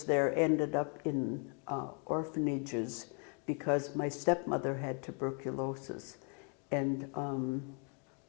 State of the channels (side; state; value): right; quieter; 38.0 dB